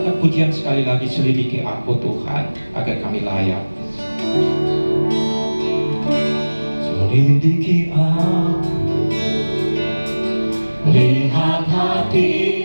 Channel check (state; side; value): inverted; both; correlation -1.00